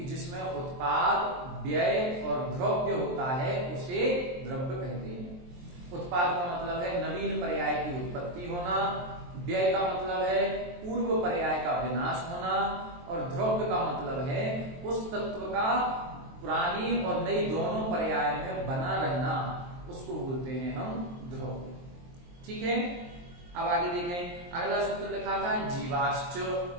जिसमें उत्पाद, व्यय और द्रव्य होता है उसे द्रव्य कहते हैं। उत्पाद का मतलब है नवीन पर्याय की उत्पत्ति होना, व्यय का मतलब है पूर्व पर्याय का विनाश होना, और द्रव्य का मतलब है उस तत्व का पुरानी और नई दोनों पर्याय में बना रहना, उसको बोलते हैं हम द्रव्य, ठीक है। अब आगे देखें, अगला सूत्र लिखा था जीवाश्च,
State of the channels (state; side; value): late; left; 23 ms